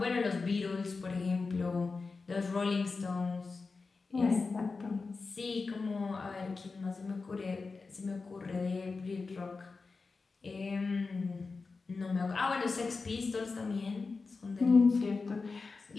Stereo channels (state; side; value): quieter; right; 4.2 dB